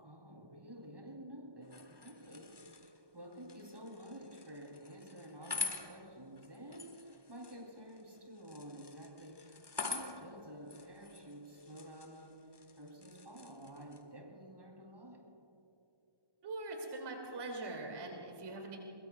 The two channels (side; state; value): left; late; 1.2 ms